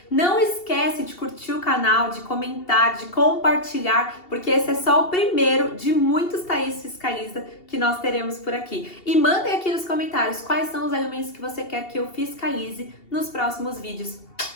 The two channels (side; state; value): right; late; 2.7 ms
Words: Não esquece de curtir o canal, de comentar, de compartilhar, porque esse é só o primeiro de muitos Thaís Fiscaliza que nós teremos por aqui. E mandem aqui nos comentários quais são os alimentos que você quer que eu fiscalize nos próximos vídeos.